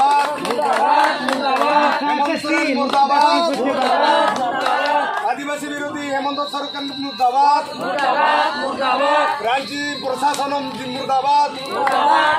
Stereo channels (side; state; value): both; identical; correlation 1.00